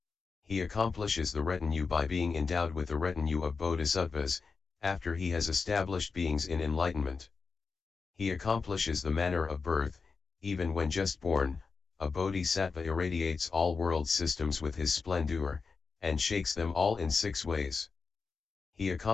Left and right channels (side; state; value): right; quieter; 4.9 dB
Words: He accomplishes the retinue by being endowed with the retinue of bodhisattvas, after he has established beings in enlightenment. He accomplishes the manner of birth, even when just born, a bodhisattva irradiates all world systems with his splendor, and shakes them all in 6 ways. He